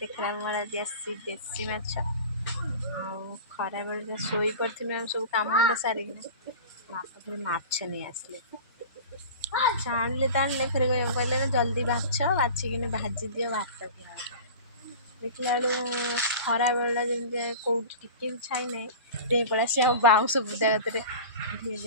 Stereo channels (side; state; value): both; inverted; correlation -0.35